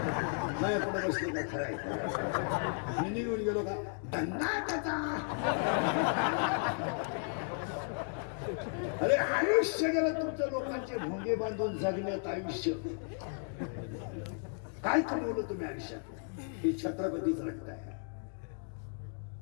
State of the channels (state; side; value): silent; right; 55 dB below the other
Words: माझ्याकडे बसले का? खरं आहे मी निघून गेलो का? धंदा त्याचा. अरे आयुष्य गेलं तुमचं, लोकांचे भोंगे बांधून जगण्यात आयुष्य. काय कमवलं तुम्ही आयुष्यात? हे छत्रपतीच रक्त आहे.